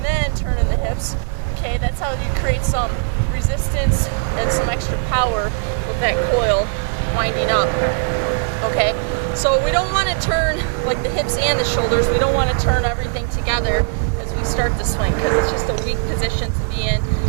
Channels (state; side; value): silent; left; digital silence